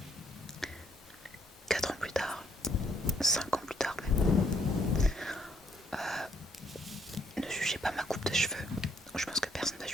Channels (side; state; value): both; normal; correlation 0.70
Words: 4 ans plus tard, 5 ans plus tard même. Ne jugez pas ma coupe de cheveux. Je pense que personne ne va